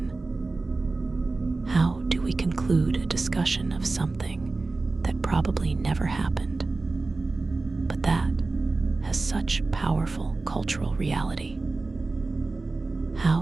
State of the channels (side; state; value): left; quieter; 3.6 dB